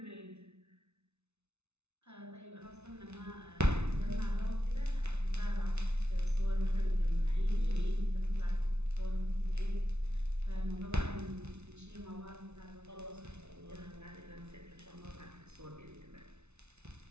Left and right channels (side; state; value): left; late; 0.81 ms